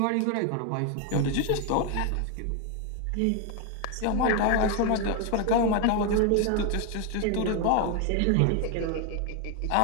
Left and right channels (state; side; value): different; both; correlation 0.01